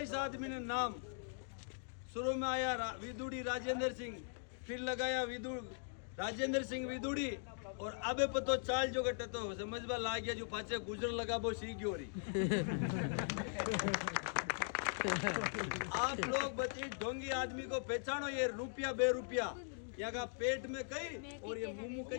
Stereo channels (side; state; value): right; silent; digital silence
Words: इस आदमी ने। नाम शुरू में आया विदुड़ी राजेंद्र सिंह, फिर लगाया राजेंद्र सिंह विदुड़ी, और अबे पतो चाल जो गटे तो समझ में ला गया, जो पाचे गुजर लगा वो सीख हो रही। आप लोग बच्चे ढोंगी आदमी को पहचानो, ये रुपया बेरुपया यहाँ का पेट में कहीं और ये मुंह